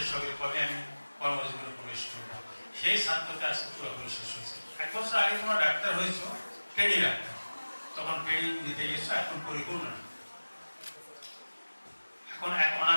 হবে, কবে আমি কর্মজীবনে প্রবেশ করবো, সেই ছাত্রতা আজকে পুরোপুরি শেষ হয়েছে। 1 বছর আগে তোমরা ডাক্তার হয়েছো, ট্রেনিং ডাক্তার, তখন ট্রেনিং দিতে গেছো, এখন পরিপূর্ণ, এখন এক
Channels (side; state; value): both; inverted; correlation -1.00